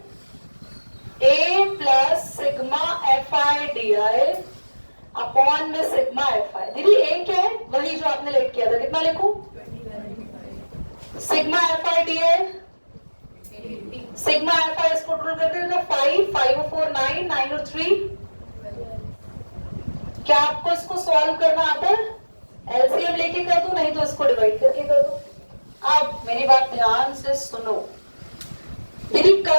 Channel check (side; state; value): both; inverted; correlation -1.00